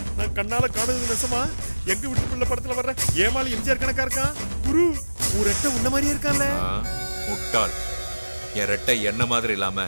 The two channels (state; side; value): inverted; both; correlation -1.00